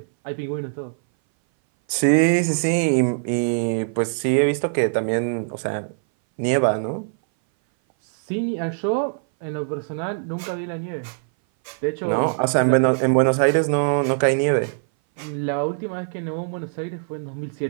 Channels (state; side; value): silent; left; 59 dB below the other